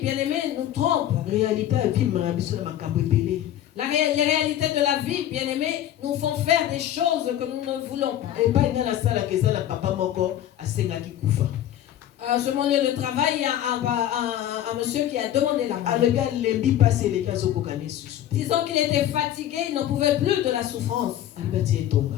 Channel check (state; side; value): quieter; right; 11.8 dB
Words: bien aimés, nous trompent. Les réalités de la vie, bien aimés, nous font faire des choses que nous ne voulons pas. Sur mon lieu de travail, il y a un monsieur qui a demandé la mort. Disons qu'il était fatigué, il n'en pouvait plus de la souffrance.